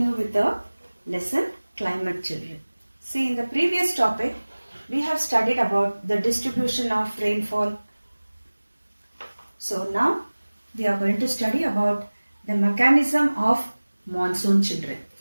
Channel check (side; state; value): both; inverted; correlation -1.00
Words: with the lesson climate children. See, in the previous topic we have studied about the distribution of rainfall. So now we are going to study about the mechanism of monsoon children.